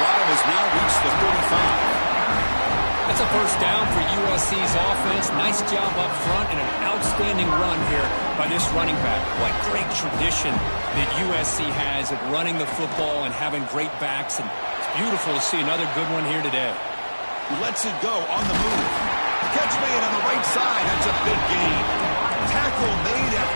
has now reached the 35. That's a first down for USC's offense. Nice job up front and an outstanding run here by this running back. What great tradition that USC has of running the football and having great backs. And it's beautiful to see another good one here today. Lets it go on the move. Catch made on the right side. That's a big gain. Tackle made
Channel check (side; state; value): both; inverted; correlation -1.00